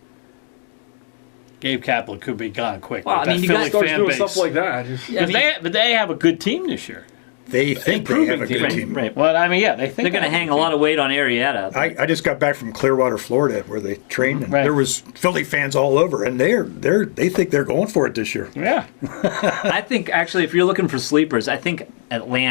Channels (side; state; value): right; silent; digital silence